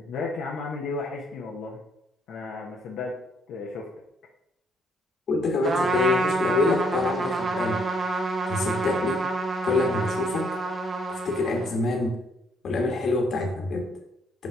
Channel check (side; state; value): both; normal; correlation 0.68